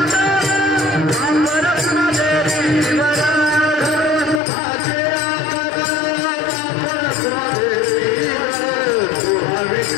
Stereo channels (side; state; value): right; drops out; at 4.4 s